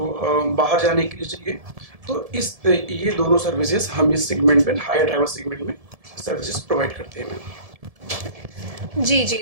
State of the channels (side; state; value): left; late; 1.7 ms